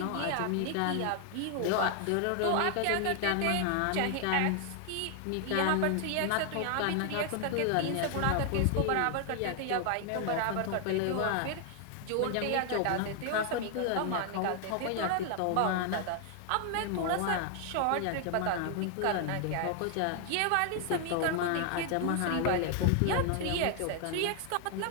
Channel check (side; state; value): both; different; correlation 0.00